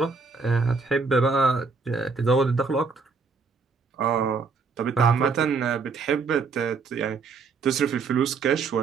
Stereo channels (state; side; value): quieter; left; 4.7 dB